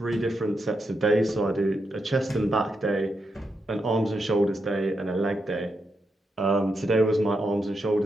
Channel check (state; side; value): normal; both; correlation 0.84